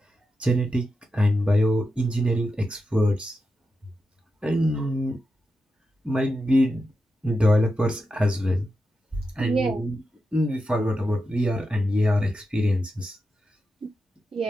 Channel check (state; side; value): normal; both; correlation 0.88